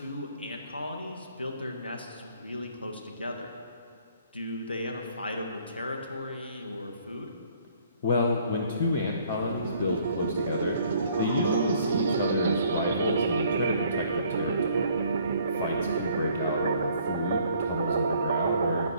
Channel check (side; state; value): both; inverted; correlation -0.61